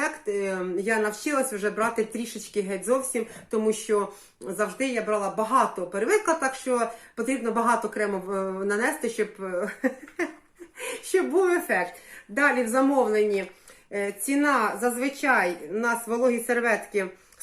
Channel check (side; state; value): both; identical; correlation 1.00